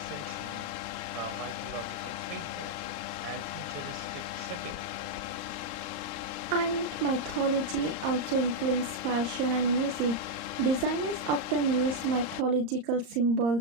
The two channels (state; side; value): late; left; 34 ms